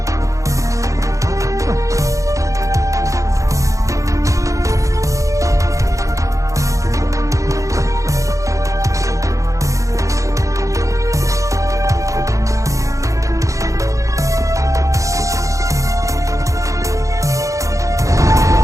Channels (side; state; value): left; late; 0.15 ms